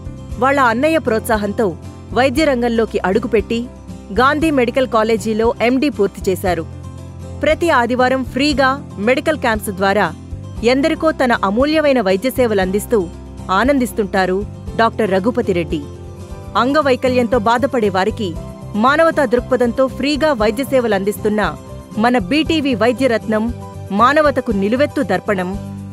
వాళ్ల అన్నయ్య ప్రోత్సాహంతో వైద్య రంగంలోకి అడుగుపెట్టి గాంధీ మెడికల్ కాలేజీలో ఎండీ పూర్తి చేశారు. ప్రతి ఆదివారం ఫ్రీగా మెడికల్ క్యాంప్స్ ద్వారా ఎందరికో తన అమూల్యమైన వైద్య సేవలందిస్తూ ఆనందిస్తుంటారు డాక్టర్ రఘుపతి రెడ్డి. అంగవైకల్యంతో బాధపడే వారికి మానవతా దృక్పథంతో ఫ్రీగా వైద్య సేవలందిస్తున్న మన బీటీవీ వైద్యరత్నం, మానవతకు నిలువెత్తు దర్పణం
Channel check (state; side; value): identical; both; correlation 1.00